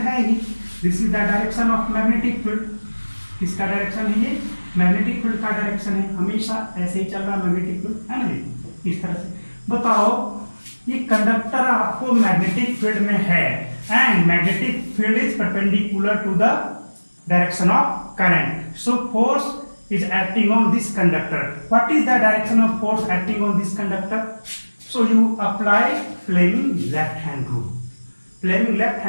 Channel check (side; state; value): both; inverted; correlation -1.00